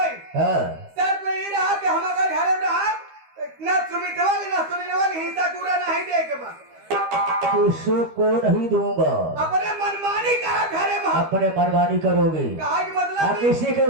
हाँ, शर्त में ये रहा कि हम अगर घर में रहा न सुमितवा न सुनीलवा हिंसा पूरा नहीं दे के बा। किसी को नहीं दूंगा। अपने मनमानी का घर में अपने मनमानी करोगी, कहा कि मतलब आप किसी के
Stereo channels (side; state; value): left; late; 13 ms